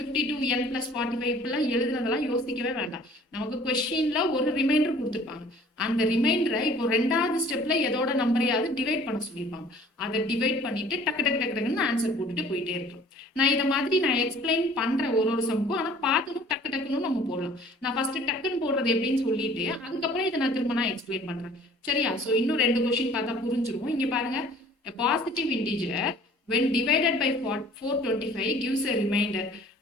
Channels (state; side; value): normal; both; correlation 0.52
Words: + 45 இப்பெல்லாம் எழுதுனதெல்லாம் யோசிக்கவே வேண்டாம். நமக்கு கொஸ்டின்ல ஒரு ரிமைண்டர் கொடுத்துருப்பாங்க அந்த ரிமைண்டரை இப்போ 2வது ஸ்டெப்ல எதோட நம்பரையாவது டிவைட் பண்ண சொல்லியிருப்பாங்க அதை டிவைட் பண்ணிட்டு டக்கு டக்கு டக்கு டக்குன்னு ஆன்சர் போட்டுட்டு போயிட்டே இருக்கோம். நான் இதை மாதிரி நான் எக்ஸ்பிளைன் பண்றேன் ஒரு சம்க்கும் ஆனா பார்த்ததும் டக்கு டக்குன்னு நம்ம போடலாம். நான் ஃபர்ஸ்ட் டக்குன்னு போடுறது எப்படின்னு சொல்லிட்டு அதுக்கப்புறம் இதை நான் திரும்ப நான் எக்ஸ்பிளைன் பண்றேன் சரியா. ஸோ இன்னும் 2 கொஸ்டின் பார்த்தா புரிஞ்சிரும். இங்க பாருங்க positive integer when divided by 425 gives a remainder